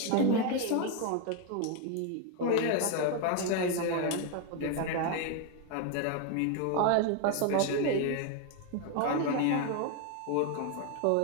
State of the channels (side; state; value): both; different; correlation 0.01